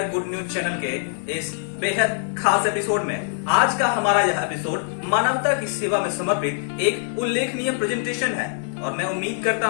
good news channel के इस बेहद खास एपिसोड में। आज का हमारा यह एपिसोड मानवता की सेवा में समर्पित एक उल्लेखनीय प्रेजेंटेशन है और मैं उम्मीद करता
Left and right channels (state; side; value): silent; right; 63 dB below the other